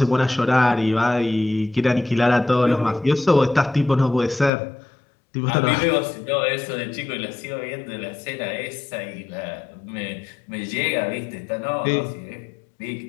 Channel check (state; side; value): drops out; right; at 4.5 s